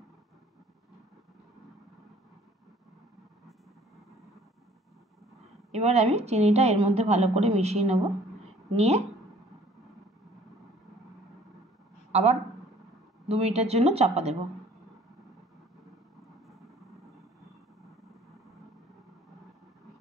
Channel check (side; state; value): both; normal; correlation 0.55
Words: এবার আমি চিনিটা এর মধ্যে ভালো করে মিশিয়ে নেব, নিয়ে আবার 2 মিনিটের জন্য চাপা দেব।